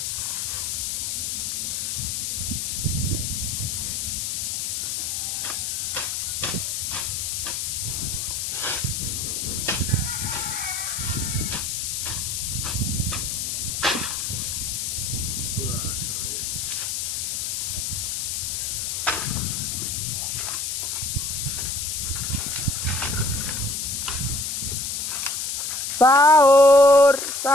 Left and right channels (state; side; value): noise; left; hiss, 1 dB below the sound